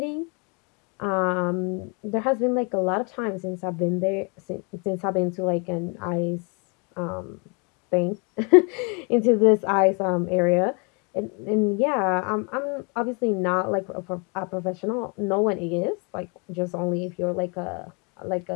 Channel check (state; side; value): quieter; right; 33.7 dB